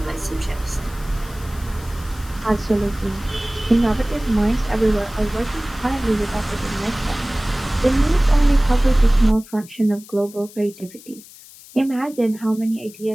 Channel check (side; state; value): left; noise; hiss, 20 dB below the sound